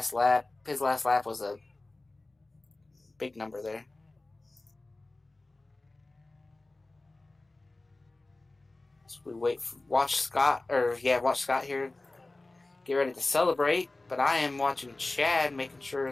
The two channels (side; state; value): right; quieter; 3.0 dB